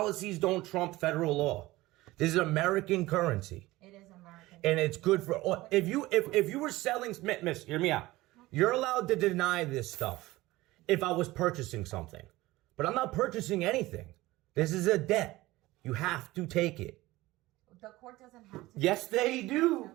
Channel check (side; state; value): left; quieter; 18.7 dB